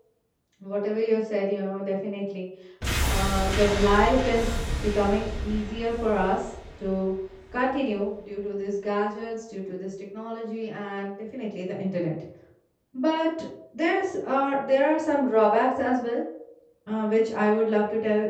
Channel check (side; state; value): both; identical; correlation 1.00